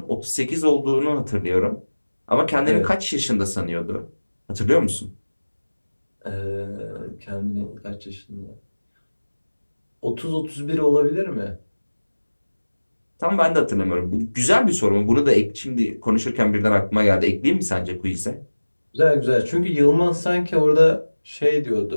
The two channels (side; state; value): both; inverted; correlation -1.00